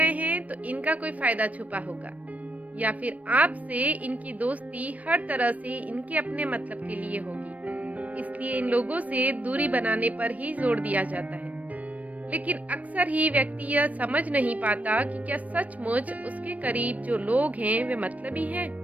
हैं तो इनका कोई फ़ायदा छुपा होगा। या फिर आपसे इनकी दोस्ती हर तरह से इनके अपने मतलब के लिए होगी। इसलिए इन लोगों से दूरी बनाने पर ही जोर दिया जाता है। लेकिन अक्सर ही व्यक्ति यह समझ नहीं पाता कि क्या सचमुच उसके करीब जो लोग हैं वे मतलबी हैं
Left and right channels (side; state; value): left; late; 0.069 ms